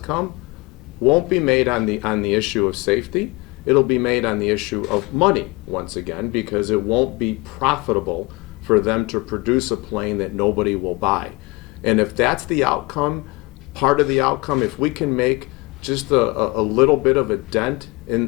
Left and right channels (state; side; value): quieter; right; 24.9 dB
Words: won't be made on the issue of safety. It'll be made on the issue of money once again, because it won't be profitable for them to produce a plane that nobody will buy. And if that's the outcome, part of the outcome, if we can make just a little bit of a dent